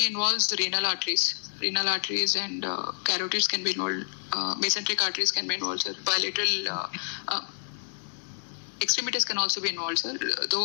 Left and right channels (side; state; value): right; silent; 59 dB below the other